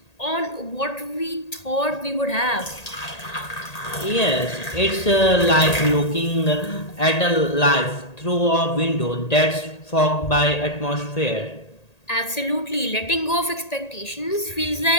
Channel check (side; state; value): right; late; 1.8 ms